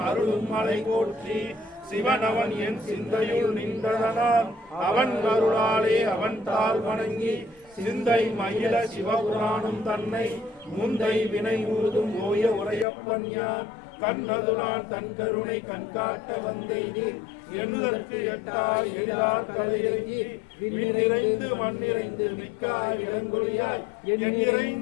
அருளும் மலை போற்றி சிவன் அவன் என் சிந்தையுள் நின்றதனால் அவன் அருளாலே அவன் தாள் வணங்கி சிந்தை மயில சிவபுராணம் தன்னை முந்தை வினை ஊதும் ஓய உரையப்பன் யார் கண்ணதுரான் தன் கருணை கண்காட்ட வந்தேனி எண்ணுதற்கு எட்டாய் எழிலார் கலையிறங்கி விண்ணிறைந்து மண்ணிறைந்து மிக்காய் இளங்கொழியாய்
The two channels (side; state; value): right; drops out; at 12.9 s